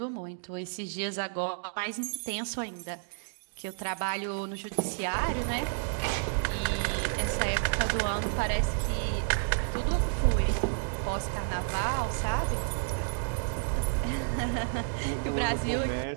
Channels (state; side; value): silent; left; digital silence